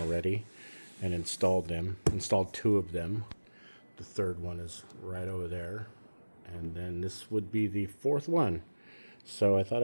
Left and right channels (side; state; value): both; inverted; correlation -1.00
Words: and installed them. Installed 2 of them. The third one is right over there, and then this would be the 4th one. So I thought